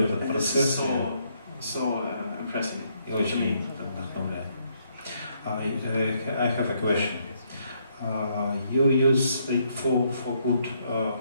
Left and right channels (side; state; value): both; inverted; correlation -0.73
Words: this is so impressive to me. I have a question. You use it for good